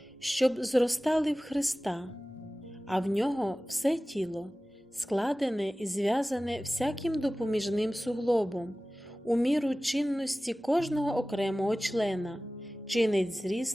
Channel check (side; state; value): both; normal; correlation 0.97